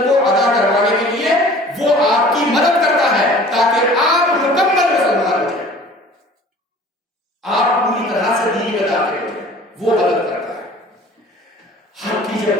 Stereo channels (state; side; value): normal; both; correlation 0.47